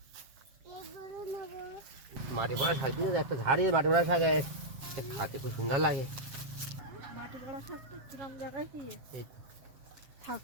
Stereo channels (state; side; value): late; left; 7.5 ms